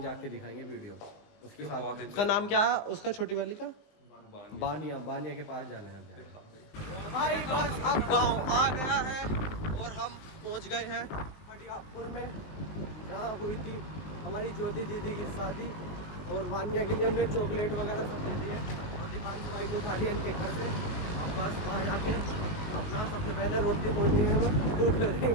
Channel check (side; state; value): right; late; 19 ms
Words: जाके दिखाएंगे वीडियो उसके साथ। उसका नाम क्या है उसका, छोटी वाली का? बानिया के पास जाना है अब जाना। भाई बस अब गांव आ गया है और हम पहुंच गए हैं बड़ियापुर में, जहाँ हुई थी हमारी ज्योति दीदी की शादी। और वानिया के लिए हमने चॉकलेट वगैरह सब दे दिए। और दीपांशु भाई को उठा लिया इनके घर से। बस वहाँ जाके अपना सबसे पहले रोटी पहुँचनी है, भूख लग रही